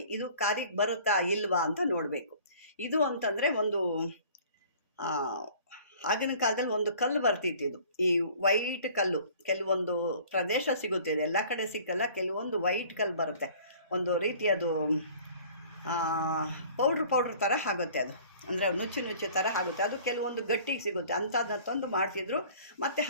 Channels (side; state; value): both; inverted; correlation -0.50